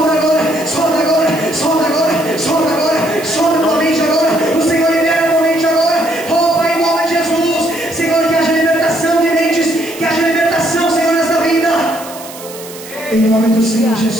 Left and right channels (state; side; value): noise; right; hiss, 15 dB below the sound